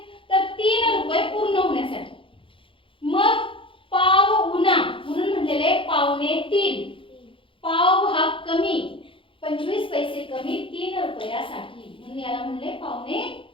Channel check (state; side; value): late; right; 0.25 ms